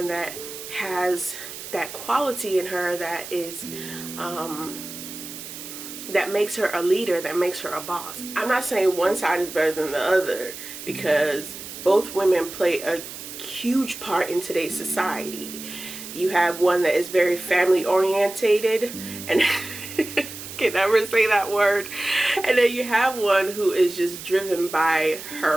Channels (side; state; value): right; noise; hiss, 11 dB below the sound